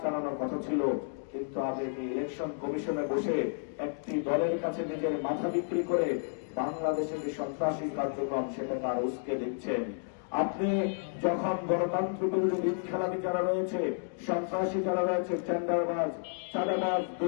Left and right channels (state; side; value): silent; right; digital silence